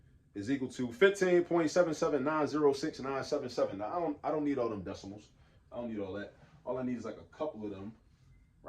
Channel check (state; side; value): identical; both; correlation 1.00